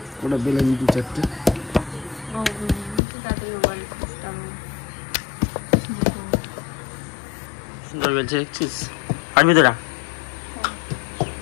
ওটা বেলে নিই 2-4টে। সুন্দর বলছে দেখছিস, পারবি তোরা?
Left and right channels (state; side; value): drops out; right; at 3.0 s